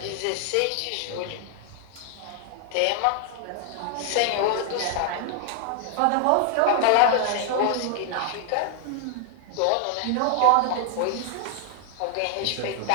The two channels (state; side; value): different; both; correlation 0.00